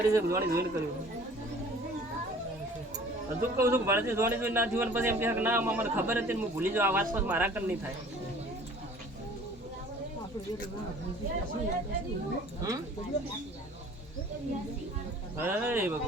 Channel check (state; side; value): normal; both; correlation 0.49